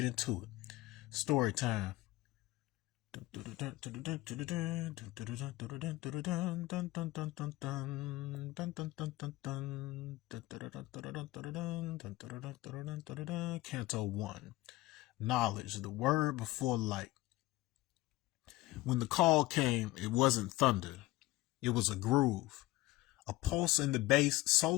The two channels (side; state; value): right; quieter; 18.4 dB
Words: into it. Story time. Canto I. Knowledge, the word before light. When the call came, it wasn't thunder. It was a groove. A pulse in the bass so